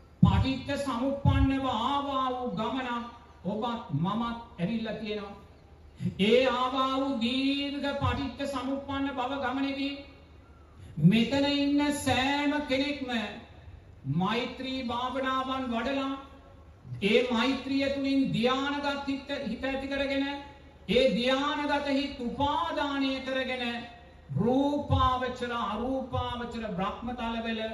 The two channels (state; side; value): identical; both; correlation 1.00